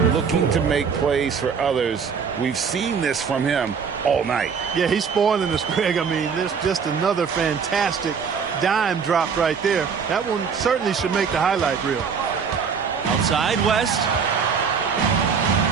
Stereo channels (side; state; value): left; quieter; 6.2 dB